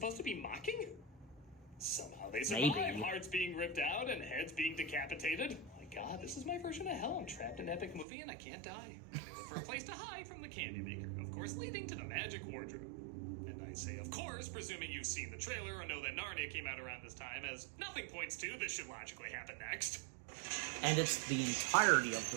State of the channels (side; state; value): left; drops out; at 8.1 s